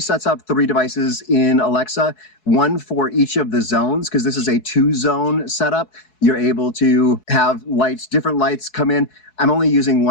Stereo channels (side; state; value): right; late; 4.7 ms